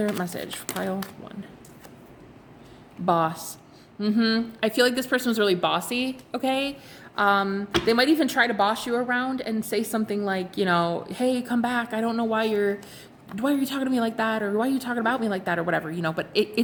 message for pile one? Boss. I feel like this person was really bossy, okay? They might even try to boss you around and say something like, hey, come back. I don't know why are you talking to me like that? Or why are you talking about me like that? Or whatever, but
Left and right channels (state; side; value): identical; both; correlation 1.00